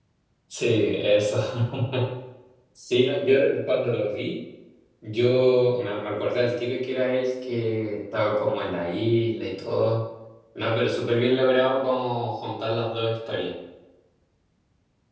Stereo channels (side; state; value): both; identical; correlation 1.00